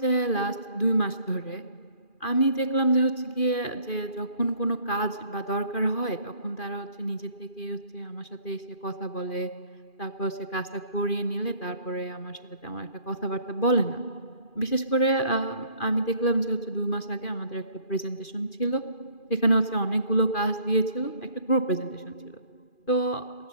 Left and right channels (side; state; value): right; late; 2.4 ms